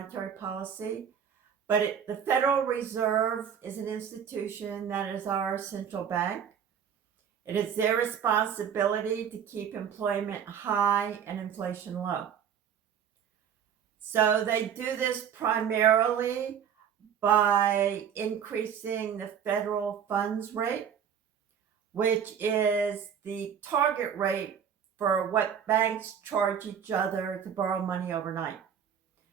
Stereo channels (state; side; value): quieter; left; 8.2 dB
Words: policy, but the Federal Reserve is an institution that is our central bank. It is their responsibility to keep employment high and inflation low. So they do this primarily by increasing the federal funds rate, which is the target rate for what banks charge each other to borrow money overnight.